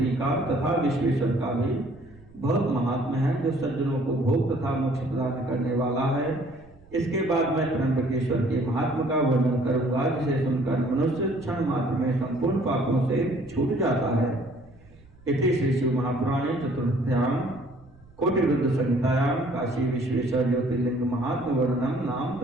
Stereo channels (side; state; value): right; noise; rumble, 25 dB below the sound